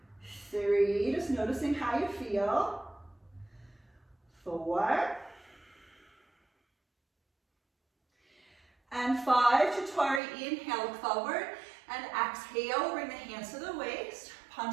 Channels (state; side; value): drops out; left; at 10.2 s